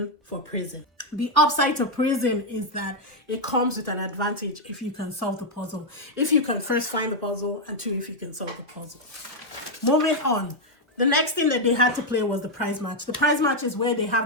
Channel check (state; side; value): normal; both; correlation 0.01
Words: for prison. The upside to prison is that it comes with an advantage if you can solve the puzzle. If you can first find the puzzle, and 2, if you can solve the puzzle. Moving on. The next thing that they had to play was the prize match. The prize match is where they have